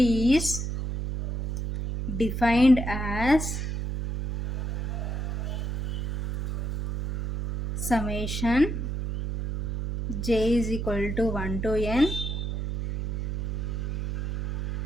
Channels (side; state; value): right; noise; hum, 2 dB below the sound